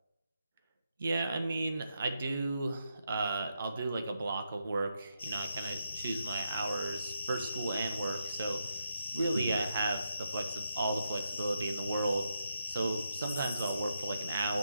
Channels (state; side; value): inverted; both; correlation -0.83